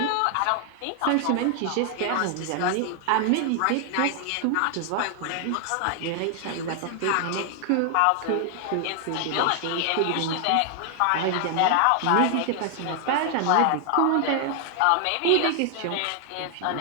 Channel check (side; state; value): both; different; correlation 0.00